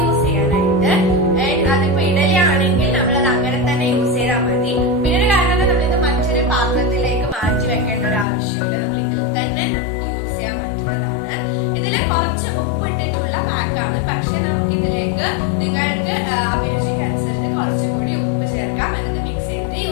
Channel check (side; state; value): right; drops out; at 8.2 s